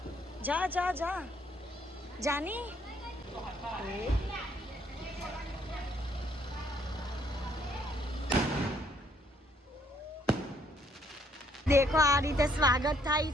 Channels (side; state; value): both; normal; correlation 0.68